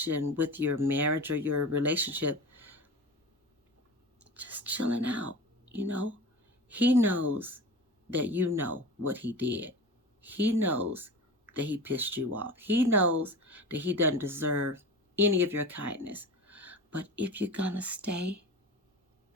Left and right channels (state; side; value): normal; both; correlation 0.33